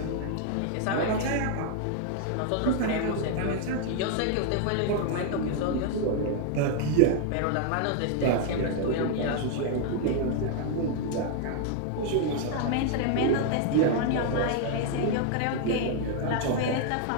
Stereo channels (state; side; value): different; both; correlation 0.00